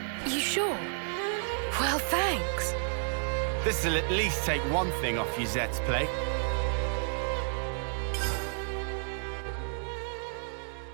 You sure? Well, thanks. This'll at least take one thing off Yuzette's plate.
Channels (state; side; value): silent; left; digital silence